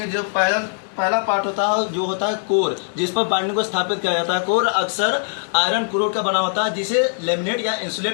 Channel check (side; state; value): right; silent; digital silence